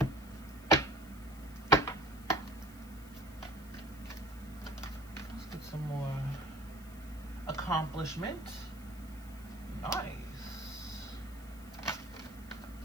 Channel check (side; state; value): left; noise; hiss, 21 dB below the sound